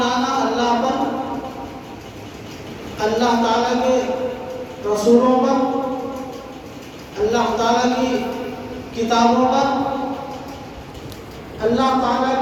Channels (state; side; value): identical; both; correlation 1.00